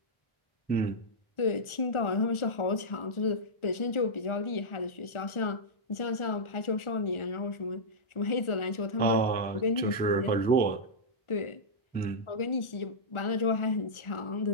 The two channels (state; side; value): late; right; 1.4 ms